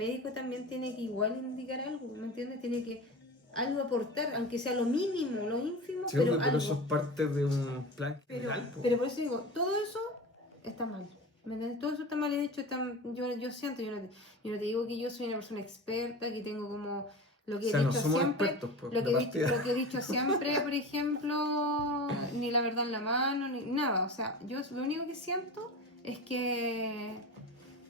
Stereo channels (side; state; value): both; normal; correlation 0.31